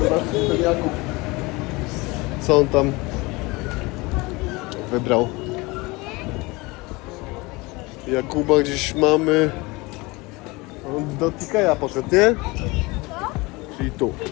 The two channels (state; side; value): quieter; right; 23.9 dB